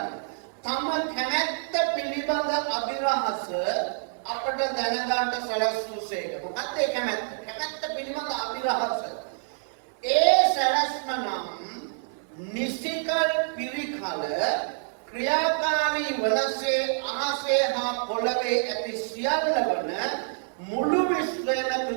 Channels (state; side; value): silent; left; digital silence